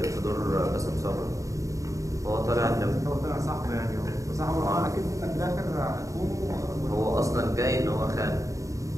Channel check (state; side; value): late; left; 0.16 ms